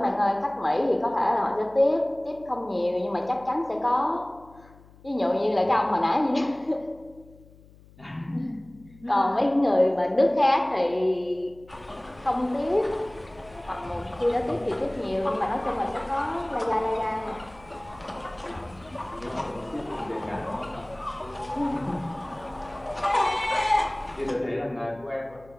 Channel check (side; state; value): left; noise; hum, 24 dB below the sound